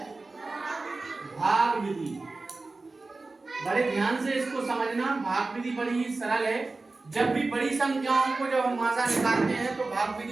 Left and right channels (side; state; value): left; quieter; 3.5 dB